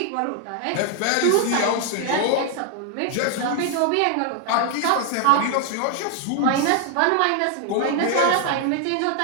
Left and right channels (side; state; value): both; different; correlation 0.00